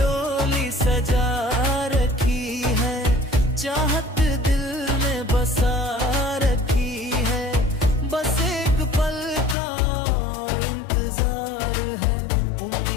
सजा रखी है, चाहत दिल में बसा रखी है। बस एक पल का इंतजार है,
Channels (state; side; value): drops out; right; at 9.6 s